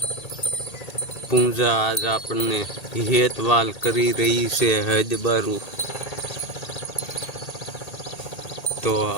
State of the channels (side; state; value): right; late; 1.8 ms